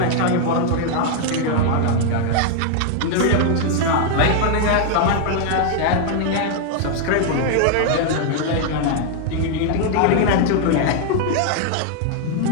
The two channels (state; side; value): different; both; correlation 0.00